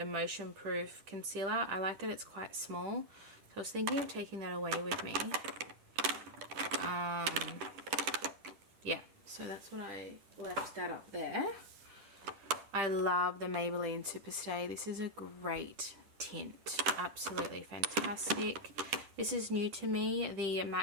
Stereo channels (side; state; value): left; late; 10 ms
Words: Proof Concealer. I like that it's quite small, so I was thinking of taking that away with me. Yeah, so that's what I left that up there. I love the Maybelline Superstay. This is a great tint, absolutely fantastic. This is new to me, the